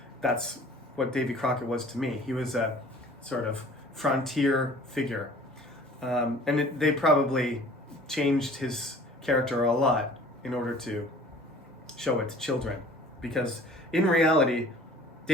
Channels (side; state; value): both; normal; correlation 0.48